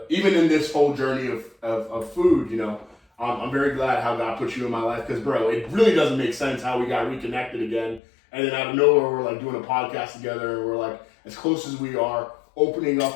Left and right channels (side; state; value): right; drops out; at 8.0 s